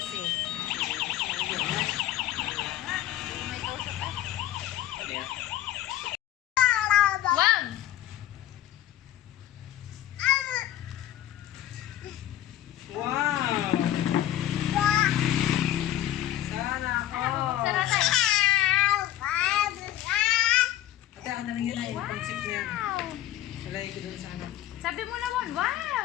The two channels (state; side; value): quieter; right; 13.0 dB